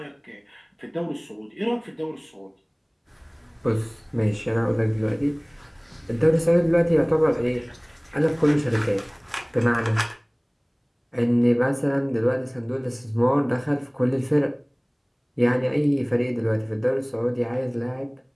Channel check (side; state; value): both; identical; correlation 1.00